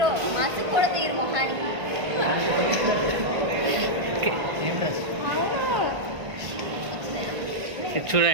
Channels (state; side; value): late; left; 1.5 ms